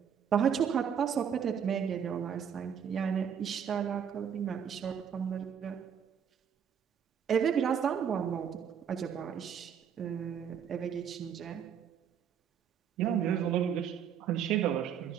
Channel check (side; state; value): left; quieter; 8.1 dB